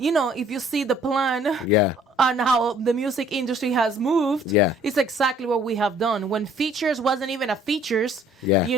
if you see the plan Yeah. on how the music industry has moved, Yeah. it's exactly what we have done. When features wasn't even a features, Yeah.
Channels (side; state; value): both; normal; correlation 0.58